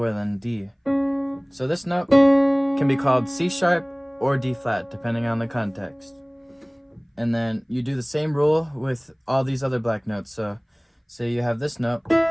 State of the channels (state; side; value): identical; both; correlation 1.00